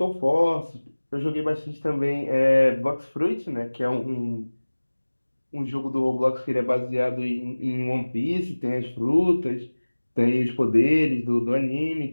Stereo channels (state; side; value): inverted; both; correlation -1.00